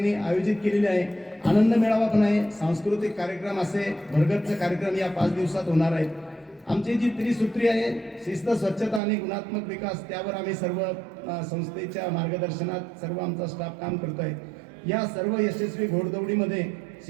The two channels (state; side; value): drops out; left; at 9.0 s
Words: आयोजित केलेली आहे. आनंद मेळावा पण आहे. सांस्कृतिक कार्यक्रम असे भरगच्च कार्यक्रम या 5 दिवसात होणार आहेत. आमची जी त्रिसूत्री आहे शिस्त, स्वच्छता आणि गुणात्मक विकास, त्यावर आम्ही सर्व संस्थेच्या मार्गदर्शनात सर्व आमचा स्टाफ काम करतो आहे. या सर्व यशस्वी घोडदौडीमध्ये